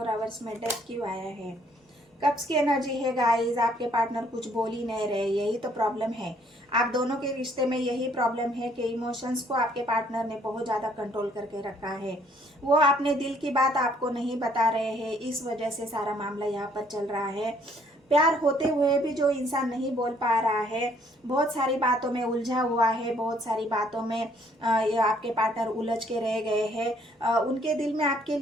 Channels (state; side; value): normal; both; correlation 0.64